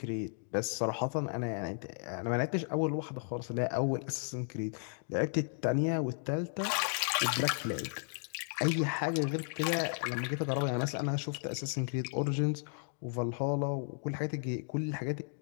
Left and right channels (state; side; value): silent; right; digital silence